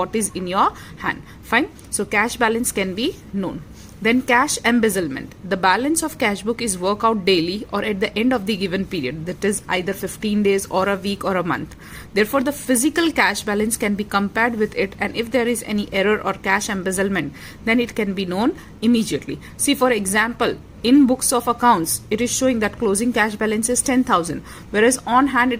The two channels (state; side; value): identical; both; correlation 1.00